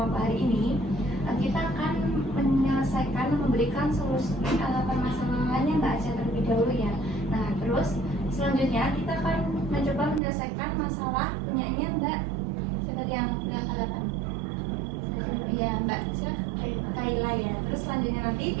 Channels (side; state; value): left; drops out; at 10.2 s